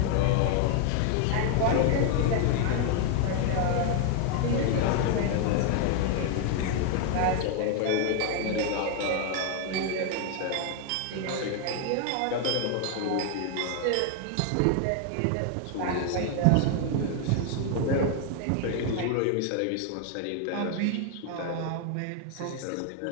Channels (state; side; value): different; both; correlation 0.00